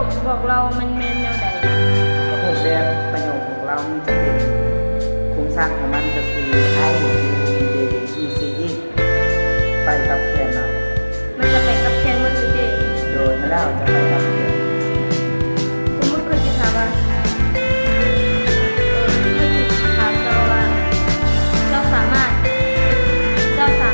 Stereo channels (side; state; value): both; inverted; correlation -1.00